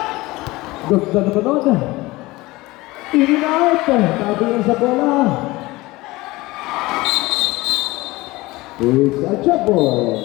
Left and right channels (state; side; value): quieter; right; 20.5 dB